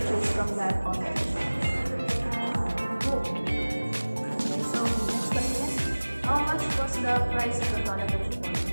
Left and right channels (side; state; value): both; inverted; correlation -1.00